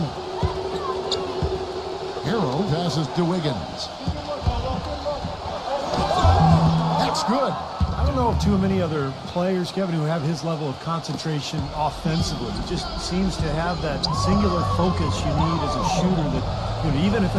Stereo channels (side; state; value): both; identical; correlation 1.00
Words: Hero passes to Wiggins. That's good. I don't know of too many other players, Kevin, who have his level of concentration offensively. He just seems to have that singular focus you need as a shooter that, you know, even if